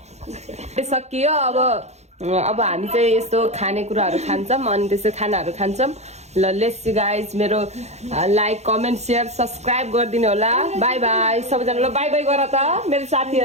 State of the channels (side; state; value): left; late; 0.32 ms